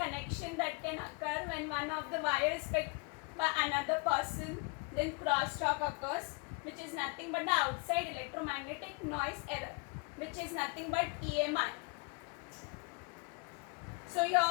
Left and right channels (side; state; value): right; quieter; 30.9 dB